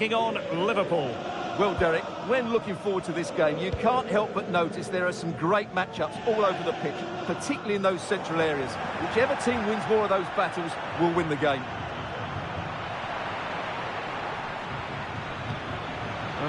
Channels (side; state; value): both; identical; correlation 1.00